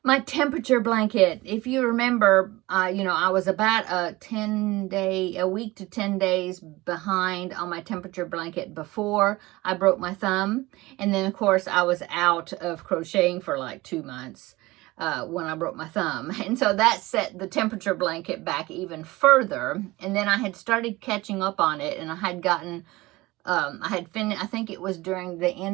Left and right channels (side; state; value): left; quieter; 20.2 dB